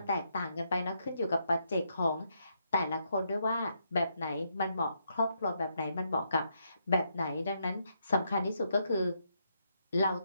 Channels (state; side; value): inverted; both; correlation -0.78